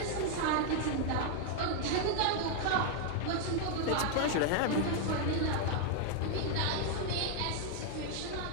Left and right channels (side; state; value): both; different; correlation 0.00